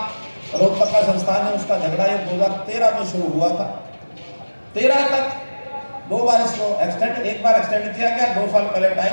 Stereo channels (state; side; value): inverted; both; correlation -1.00